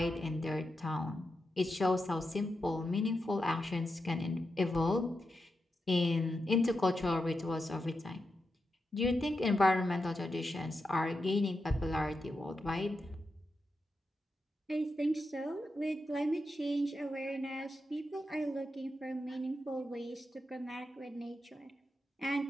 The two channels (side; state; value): both; normal; correlation 0.87